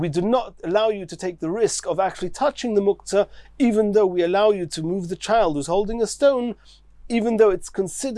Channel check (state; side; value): identical; both; correlation 1.00